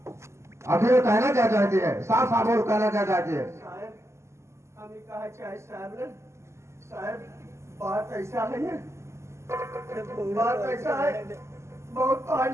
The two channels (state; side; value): late; left; 0.13 ms